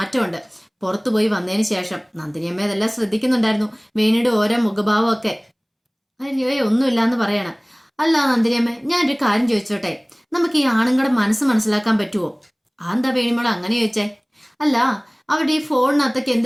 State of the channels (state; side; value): identical; both; correlation 1.00